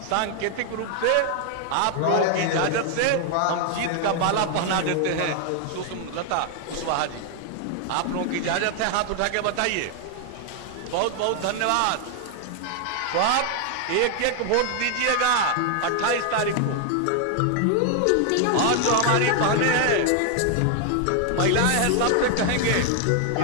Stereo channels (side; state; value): both; different; correlation 0.00